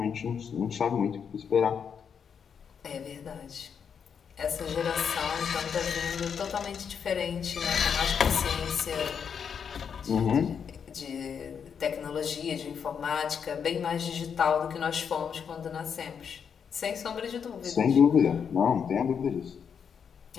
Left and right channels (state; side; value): quieter; right; 7.1 dB